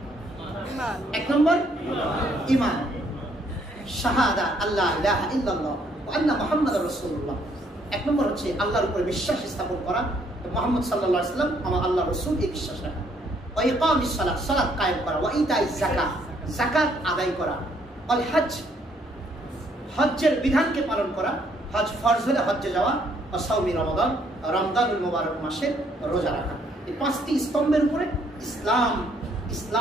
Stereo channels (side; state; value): both; normal; correlation 0.68